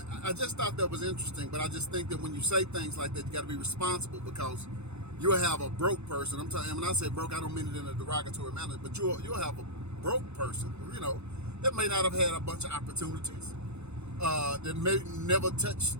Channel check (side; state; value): left; late; 0.81 ms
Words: I just thought that was interesting, but I just think that when you say things like that, you got to be responsible, because you'll have a broke person. I'm telling you, when I say broke, I don't mean it in a derogatory manner, but you'll have a broke person, that may not have had a bunch of opportunities, that may never touch,